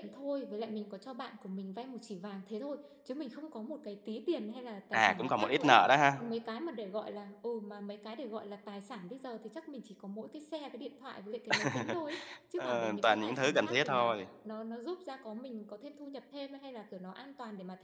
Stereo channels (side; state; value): both; identical; correlation 1.00